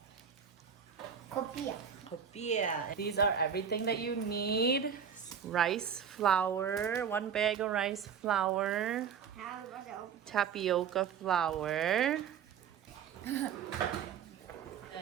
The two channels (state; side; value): quieter; left; 7.5 dB